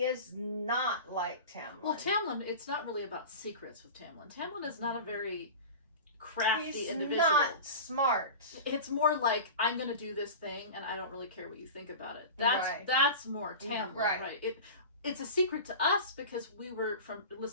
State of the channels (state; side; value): inverted; both; correlation -0.31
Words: is not like Tamlin. Well, Tamlin, it's not really about secrets with Tamlin. Tamlin is not a very crafty individual. He's not smart. It's more like, I'm going to do this thing, and I don't really care what you think about it. That's more Tamlin, right? It's a secret to us because we were